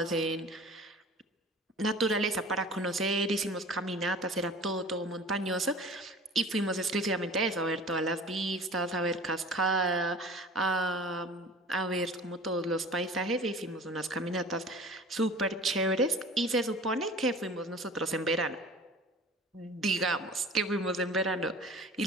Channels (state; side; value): normal; both; correlation 0.42